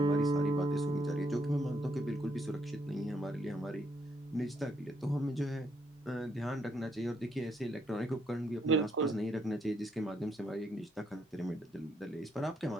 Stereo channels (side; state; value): both; normal; correlation 0.73